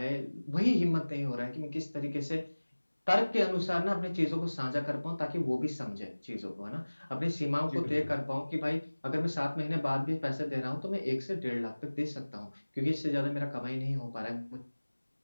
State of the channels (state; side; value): inverted; both; correlation -1.00